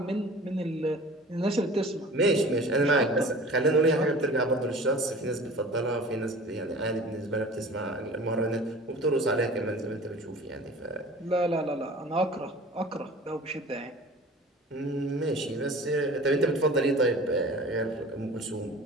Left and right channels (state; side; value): normal; both; correlation 0.42